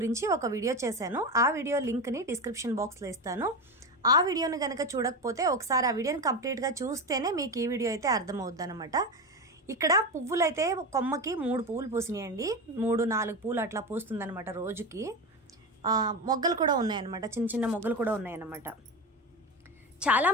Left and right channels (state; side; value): normal; both; correlation 0.19